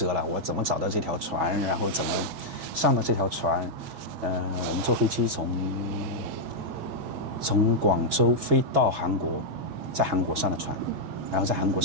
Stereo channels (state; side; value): late; left; 6.2 ms